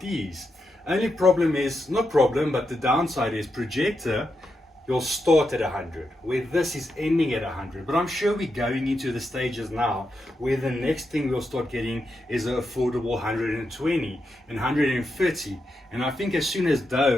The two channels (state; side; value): normal; both; correlation 0.85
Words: these. Only problem is, not problem, but the downside is projector, you'll start at 100, where this is ending at 100. But I'm sure we're going into the stages now where the next thing we'll start getting is an affordable 120 and 130. And I think as soon as